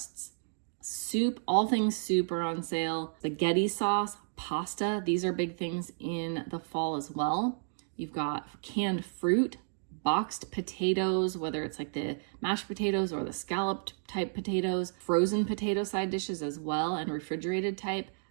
Soup, all things soup are on sale. Spaghetti sauce, pasta, these are big things in the fall as well. You've got canned fruit, boxed potatoes, whether it's like the mashed potatoes or the scalloped type potatoes, frozen potato side dishes as well, and refrigerated type.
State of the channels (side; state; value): left; silent; digital silence